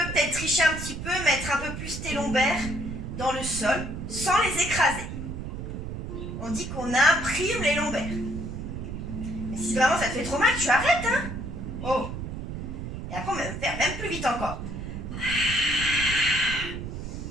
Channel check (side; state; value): right; noise; rumble, 7 dB below the sound